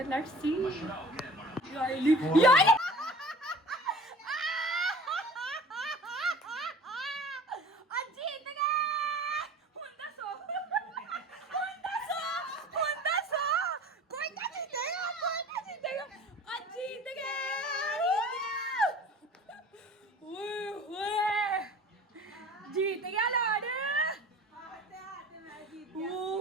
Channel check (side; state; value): both; normal; correlation 0.43